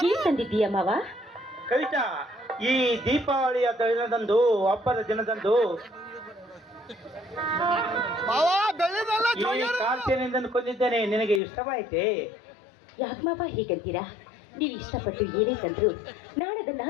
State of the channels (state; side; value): drops out; right; at 11.4 s